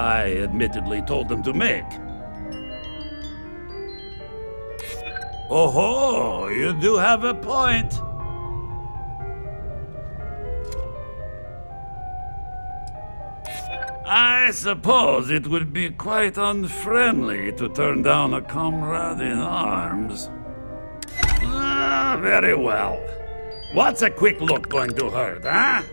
admittedly told them to make. Oh, you do have a point. I suppose it would be quite unfriendly to turn down a comrade in arms. Ah, very well. What's a quick look going to hurt, huh?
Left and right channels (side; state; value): both; inverted; correlation -1.00